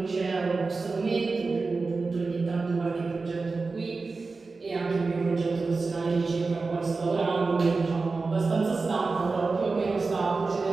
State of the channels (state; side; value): quieter; left; 4.0 dB